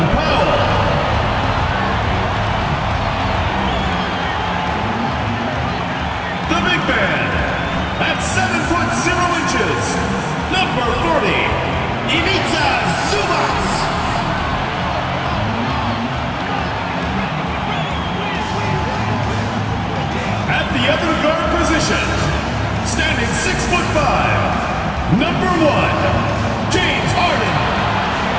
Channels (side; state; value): both; identical; correlation 1.00